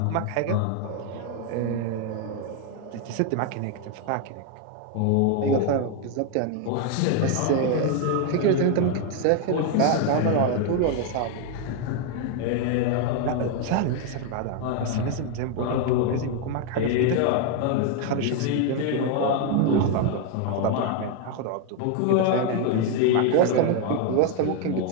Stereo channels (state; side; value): different; both; correlation 0.01